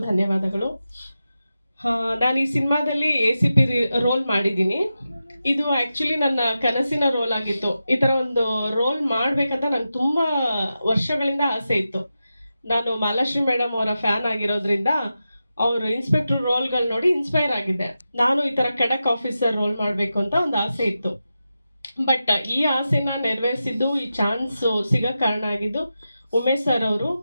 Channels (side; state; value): both; inverted; correlation -0.91